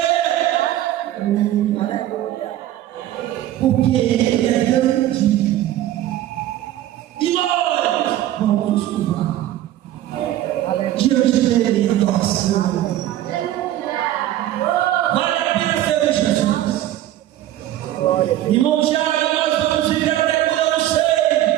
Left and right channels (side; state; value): left; quieter; 13.4 dB